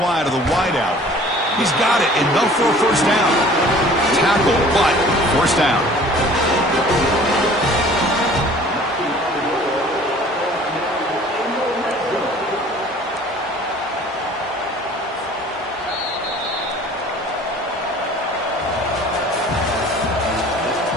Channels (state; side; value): normal; both; correlation 0.49